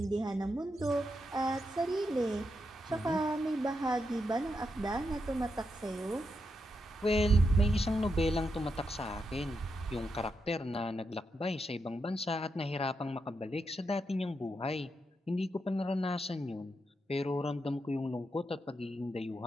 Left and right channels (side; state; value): both; normal; correlation 0.84